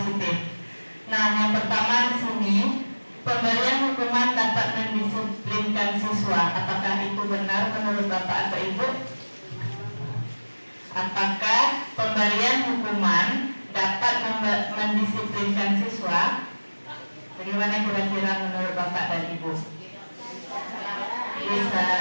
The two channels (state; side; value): inverted; both; correlation -1.00